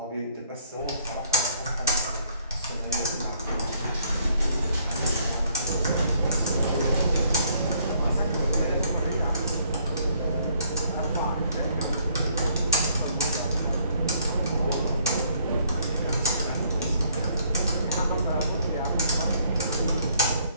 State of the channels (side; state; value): both; inverted; correlation -0.65